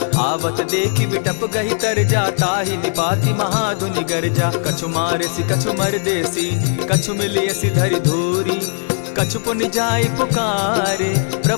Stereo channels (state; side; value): silent; right; digital silence